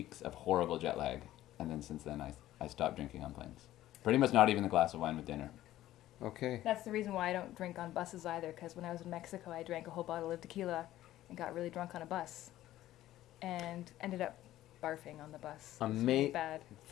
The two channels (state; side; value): quieter; right; 14.3 dB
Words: of horrible jet lag. And then since then, I stopped drinking on planes. Pretty much not even a glass of wine with dinner. Okay. That's the reason why I don't drink on buses either, because when I was in Mexico, I drank a whole bottle of tequila and got really drunk on a bus. And ended up barfing on the bus. It was really bad.